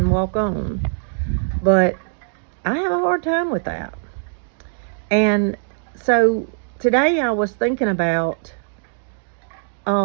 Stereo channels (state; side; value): silent; left; 65 dB below the other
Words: walk on. But I have a hard time with that. And so today I was thinking about